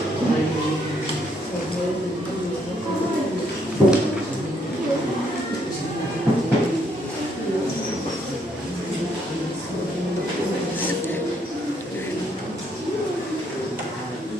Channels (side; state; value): both; normal; correlation 0.71